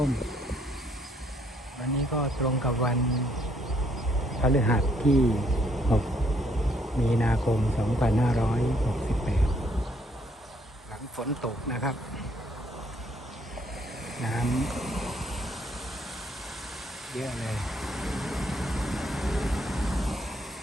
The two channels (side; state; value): both; normal; correlation 0.68